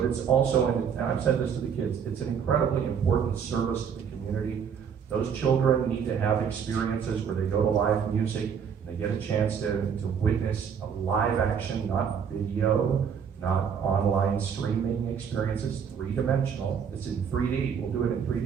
it's also, and I've said this to the kids, it's an incredibly important service to the community. Those children need to have experiences where they go to live music. They get a chance to witness a live action, not video, not online streaming experiences, three-dimensional. It's in 3D. We'll do it in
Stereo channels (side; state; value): left; quieter; 7.3 dB